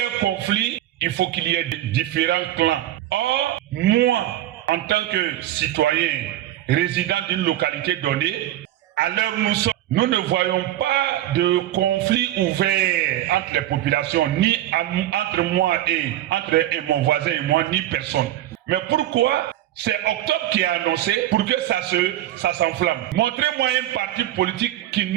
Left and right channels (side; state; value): left; quieter; 13.7 dB